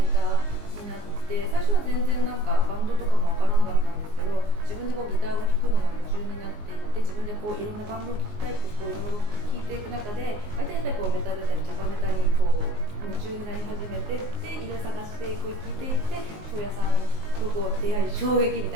ターになって、最初は全然バンドとかもわからなかったんですけど、自分でギターを弾くのが夢中になっていって、自分でいろんなバンドを聴きたいっていろいろ聴いていく中で、大体やっぱりメタルだったりチャカメタに夢中になり始めてっていろいろ探して聴いていって、庄屋さんと出会い衝撃み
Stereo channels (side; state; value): left; late; 19 ms